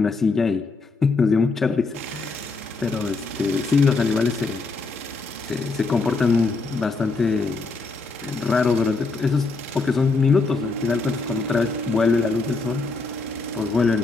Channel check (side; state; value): right; quieter; 3.8 dB